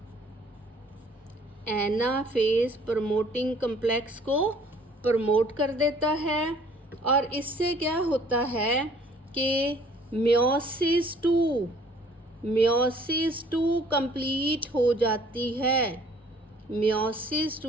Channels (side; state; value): both; normal; correlation 0.56